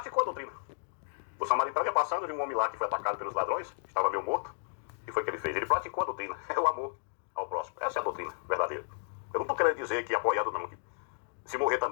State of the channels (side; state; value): right; silent; digital silence